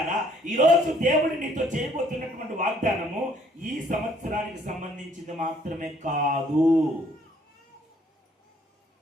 ఈరోజు దేవుడు నీతో చేయబోతున్నటువంటి వాగ్దానము ఈ సంవత్సరానికి సంబంధించింది మాత్రమే కాదు,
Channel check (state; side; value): normal; both; correlation 0.63